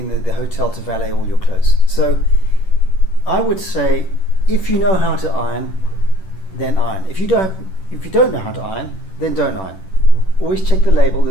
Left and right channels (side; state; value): right; late; 10 ms